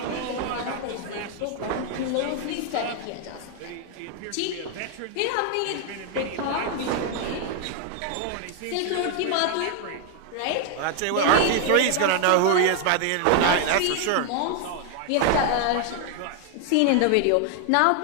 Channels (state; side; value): different; both; correlation 0.00